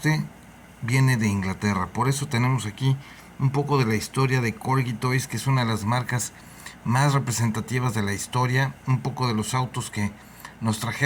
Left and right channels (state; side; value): identical; both; correlation 1.00